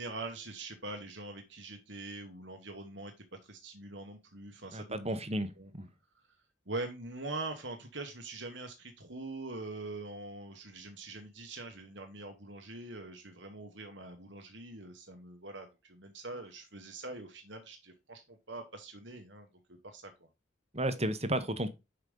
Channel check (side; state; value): both; normal; correlation 0.29